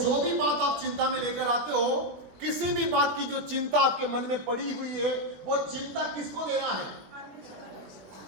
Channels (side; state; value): left; late; 21 ms